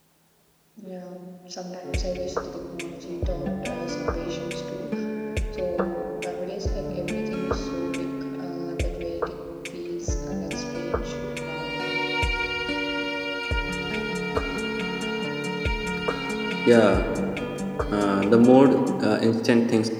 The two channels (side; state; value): both; identical; correlation 1.00